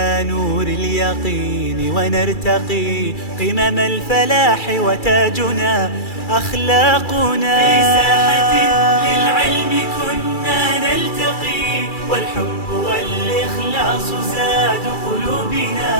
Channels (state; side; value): late; right; 2.3 ms